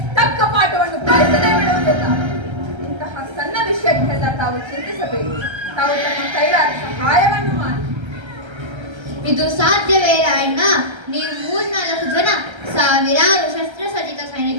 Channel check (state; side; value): late; left; 1.3 ms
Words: ತಕ್ಕ ಪಾಠವನ್ನು ಕಲಿಸದೇ ಬಿಡುವುದಿಲ್ಲ. ಇಂತಹ ಸಣ್ಣ ವಿಷಯಕ್ಕೆಲ್ಲ ತಾವು ಚಿಂತಿಸಬೇಕು. ತಾವು ತಮ್ಮ ಕೈಲಾದ ಸಹಾಯವನ್ನು ಮಾಡಿ. ಇದು ಸಾಧ್ಯವೇ ರಾಯಣ್ಣ? ನೀವು 3-4 ಜನ ಸಾವಿರಾರು ಶಸ್ತ್ರಸಜ್ಜಿತ